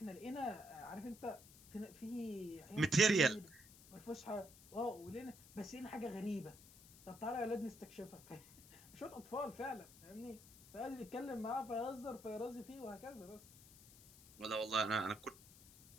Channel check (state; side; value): noise; left; hiss, 20 dB below the sound